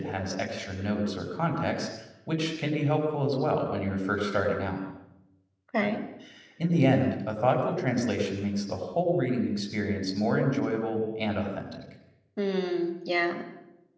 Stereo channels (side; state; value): both; identical; correlation 1.00